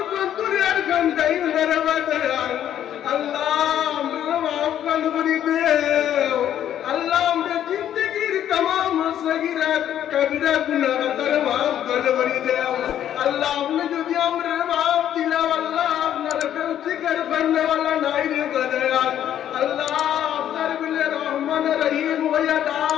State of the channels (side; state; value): right; quieter; 10.7 dB